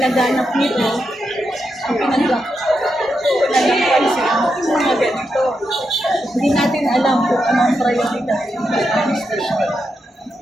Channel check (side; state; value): both; normal; correlation 0.85